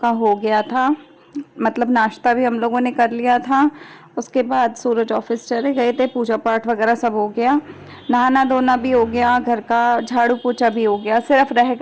हो गया था। मतलब नाश्ता भी हम लोगों ने कर लिया था। उसके बाद सूरज ऑफिस चले गए थे, पूजा पाठ वगैरह सब हो गया, नहाना धोना भी हो गया, घर का झाड़ू पोछा भी हो गया। सिर्फ रह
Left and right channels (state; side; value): identical; both; correlation 1.00